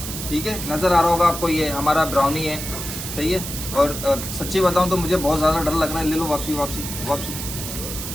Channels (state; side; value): noise; right; hiss, 7 dB below the sound